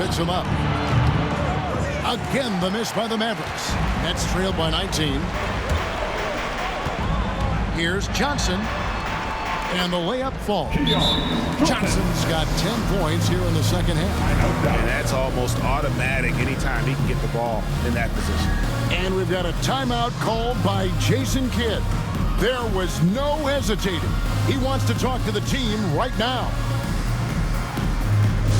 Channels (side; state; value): both; identical; correlation 1.00